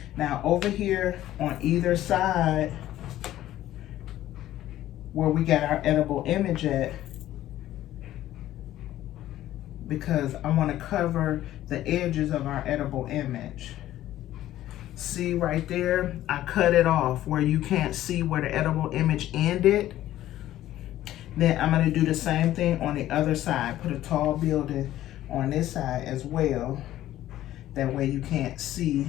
Now over here on either side where we got our edible image at, because I wanna cover the edges of our edible image. See right there, I cut it off where you can't see where the edible image ended. Then I'm gonna do the same thing on the other side. Put a tall building on this side as well. That way you can't see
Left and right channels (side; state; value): right; quieter; 13.7 dB